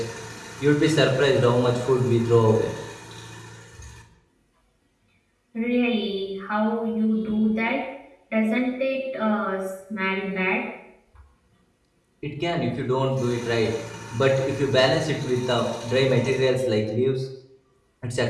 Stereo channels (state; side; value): identical; both; correlation 1.00